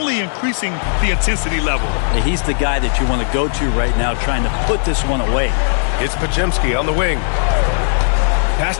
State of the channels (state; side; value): silent; right; 57 dB below the other